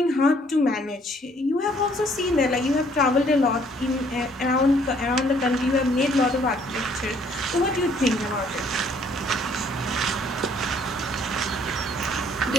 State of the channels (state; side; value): normal; both; correlation 0.62